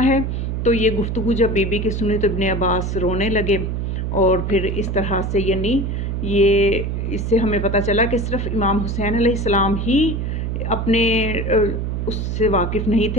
ہے. تو یہ گفتگو جب بی بی کی سنی تو ابن عباس رونے لگے. اور پھر اس طرح سے یعنی اس سے ہمیں پتہ چلا کہ صرف امام حسین علیہ السلام ہی اپنے اس سے واقف نہیں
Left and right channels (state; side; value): noise; right; hum, 2 dB below the sound